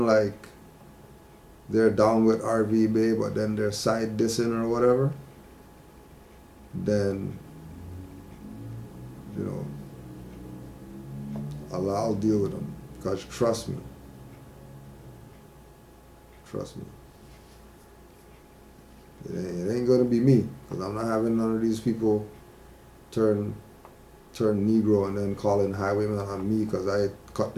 like they're down with RV Bay, but then they're side dissing or whatever, then, you know, I'll deal with them. Because trust me. Trust me. It ain't gonna be me. Because I'm not having none of these people turn Negro and then calling highwaymen on me because I cut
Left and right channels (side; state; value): both; identical; correlation 1.00